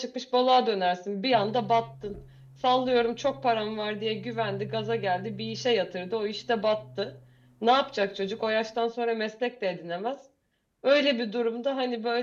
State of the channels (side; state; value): both; identical; correlation 1.00